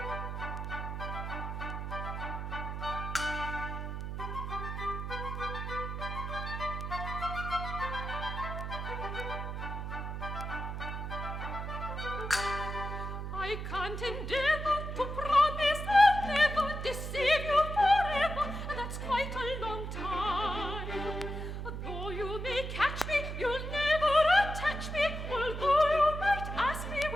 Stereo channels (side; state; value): right; noise; hum, 5 dB below the sound